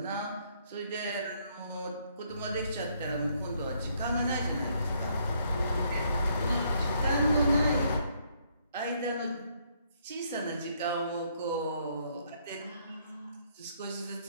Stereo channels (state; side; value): inverted; both; correlation -0.70